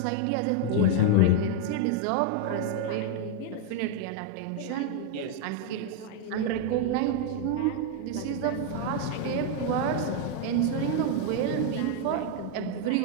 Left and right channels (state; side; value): different; both; correlation 0.00